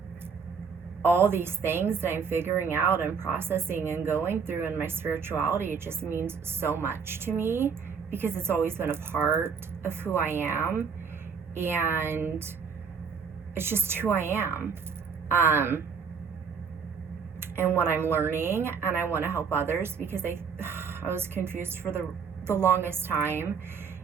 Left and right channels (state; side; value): quieter; left; 6.0 dB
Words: all these things that I'm figuring out and processing and going through in my spirituality, it just means so much to me because it's always been a part of who I am, and it's just who I am, and what I'm learning, and I want to help others because I was confused for the longest time,